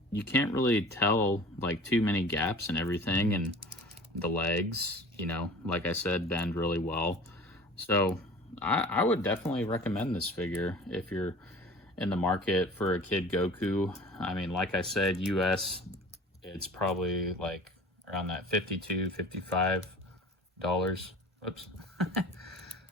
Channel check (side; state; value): both; normal; correlation 0.42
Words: you can't really tell like too many gaps and everything, and the legs, you know, like I said, bend really well. So I would definitely recommend this figure if you're in the market for a Kid Goku. I mean, like I said, US, it's probably like around that $52, $55. Oops.